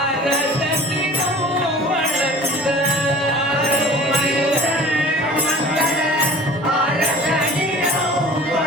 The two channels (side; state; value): both; normal; correlation 0.43